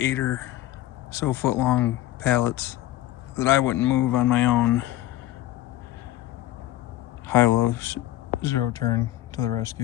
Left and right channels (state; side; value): quieter; right; 14.9 dB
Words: or so foot long pallets that I wouldn't move on my own. Hilo zero turn to the